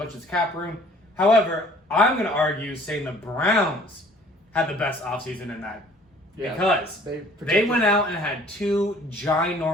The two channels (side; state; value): both; normal; correlation 0.54